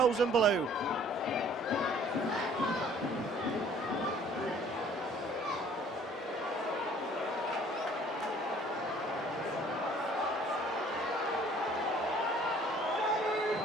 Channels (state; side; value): normal; both; correlation 0.55